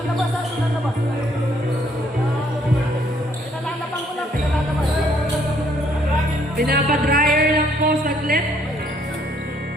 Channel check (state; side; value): normal; both; correlation 0.66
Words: Pinapadryer lang po saglit.